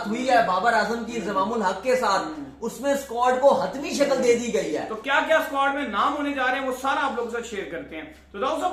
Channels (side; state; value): both; identical; correlation 1.00